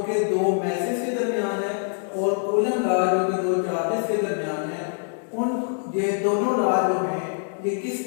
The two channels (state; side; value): silent; right; 62 dB below the other